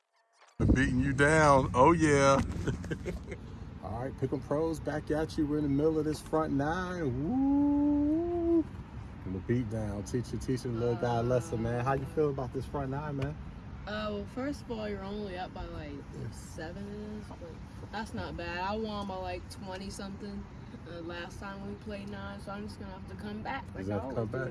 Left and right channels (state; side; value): identical; both; correlation 1.00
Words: Beating you down. Oh yeah. All right, Pick'em Pros back at you. We're in the middle of this front 9. Woo! And the beat down. Teaching the little guy a lesson, man. How you feel about this front 9, man? Well, first of all, you're only up by like 7. But that's not bad. I won by like 20 something last time we played 9, so I'm just gonna have to come back. Like come